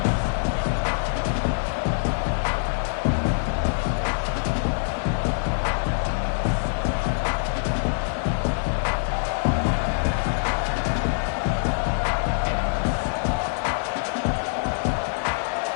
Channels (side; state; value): right; silent; 58 dB below the other